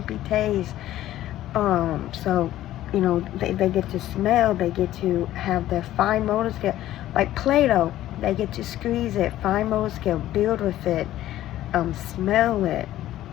taste. They get to smell, they get to have their fine motor skill, like Play-Doh, they get to squeeze it, fine motor skill, build with it, smell it,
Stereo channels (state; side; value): quieter; right; 13.8 dB